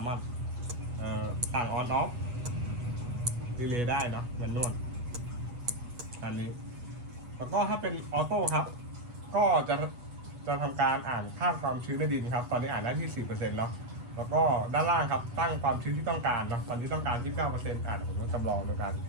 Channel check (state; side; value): late; left; 8.2 ms